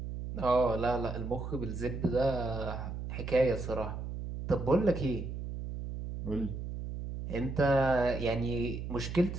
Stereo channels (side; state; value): right; noise; hum, 6 dB below the sound